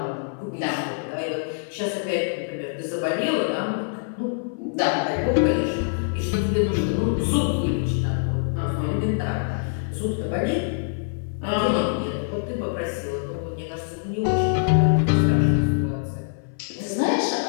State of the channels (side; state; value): right; silent; 57 dB below the other